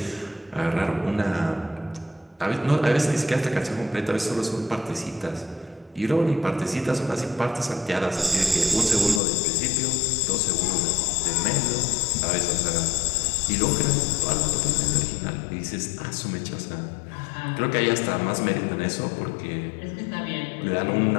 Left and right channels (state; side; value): drops out; right; at 9.2 s